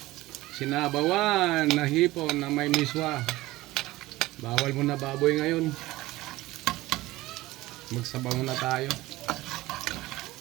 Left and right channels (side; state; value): left; quieter; 18.3 dB